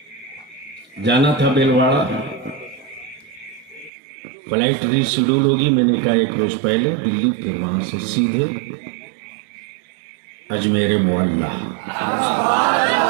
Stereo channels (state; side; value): drops out; left; at 3.9 s